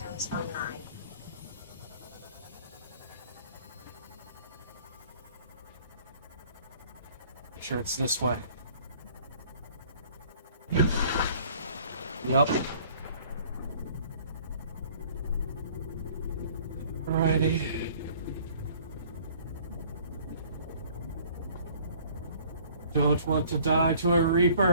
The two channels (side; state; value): both; inverted; correlation -0.54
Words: online. Make sure it's this way. Yep. Alrighty. Don't want to die to a